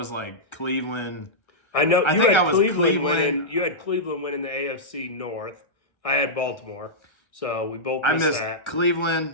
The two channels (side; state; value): right; late; 1.3 ms